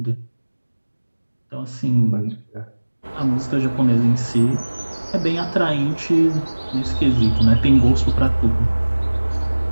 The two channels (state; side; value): inverted; both; correlation -1.00